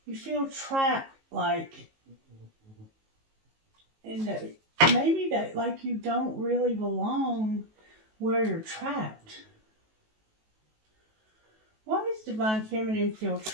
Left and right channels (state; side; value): late; left; 19 ms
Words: You feel trapped, like, in the, maybe that, like you don't really belong where you're trapped. Why does Divine Feminine feel